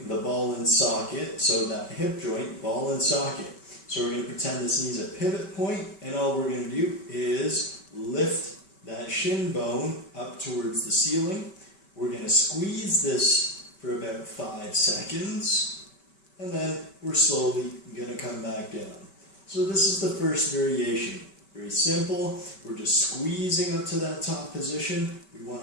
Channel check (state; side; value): late; right; 5.2 ms